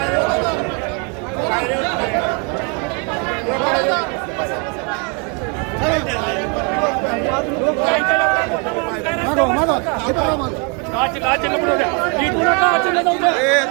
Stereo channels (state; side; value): quieter; left; 34.7 dB